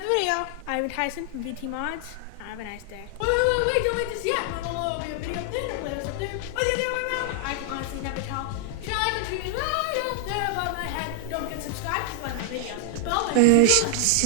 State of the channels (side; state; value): both; different; correlation 0.00